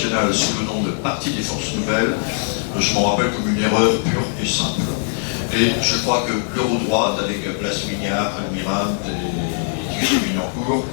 sous le nom de Parti des Forces Nouvelles. Je m'en rappelle comme une erreur pure et simple. Et je crois que l'Eurodroite, avec Blas Mignard, Almirante et Thierry Minancourt,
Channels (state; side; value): silent; right; digital silence